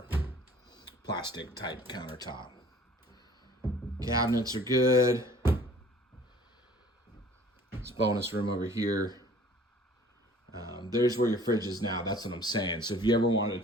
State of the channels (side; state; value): both; normal; correlation 0.51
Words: plastic type countertop. Cabinets are good. This bonus room over here. There's where your fridge is now. That's what I'm saying. So if you ever wanted